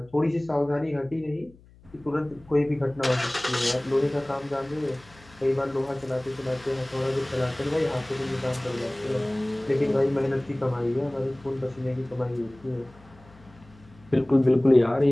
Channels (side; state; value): left; noise; hum, 25 dB below the sound